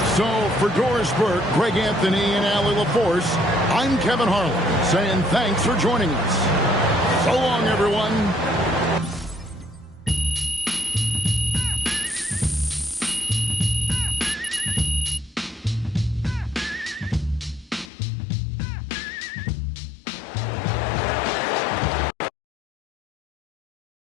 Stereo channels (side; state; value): right; drops out; at 17.9 s